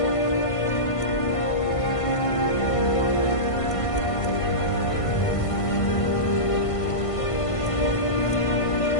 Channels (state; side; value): late; right; 1.5 ms